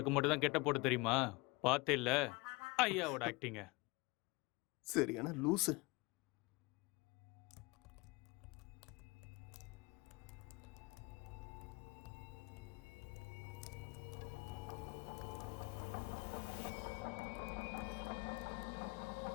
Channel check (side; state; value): right; quieter; 25.5 dB